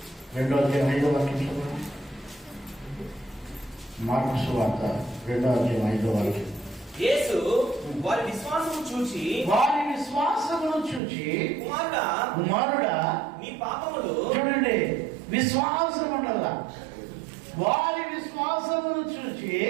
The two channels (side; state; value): left; drops out; at 11.0 s